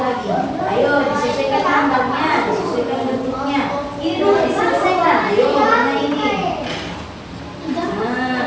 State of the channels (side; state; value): both; identical; correlation 1.00